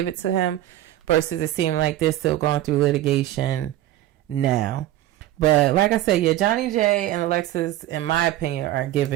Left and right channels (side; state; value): left; quieter; 14.1 dB